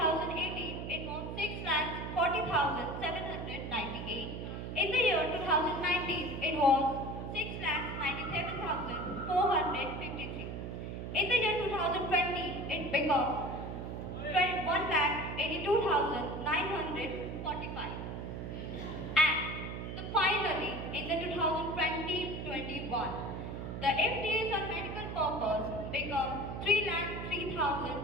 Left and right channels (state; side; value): noise; right; hum, 6 dB below the sound